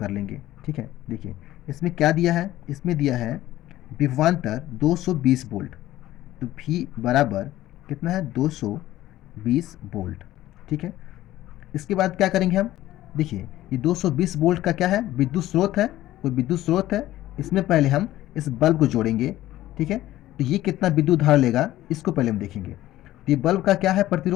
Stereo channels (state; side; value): quieter; right; 14.9 dB